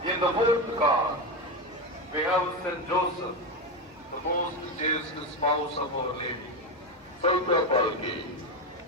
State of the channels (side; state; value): both; normal; correlation 0.13